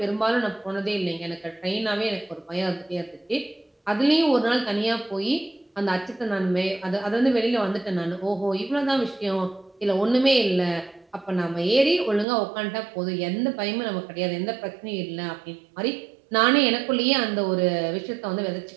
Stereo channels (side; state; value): left; drops out; at 12.2 s